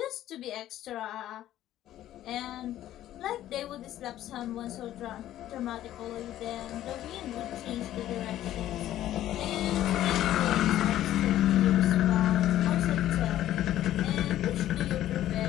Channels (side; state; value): right; quieter; 13.0 dB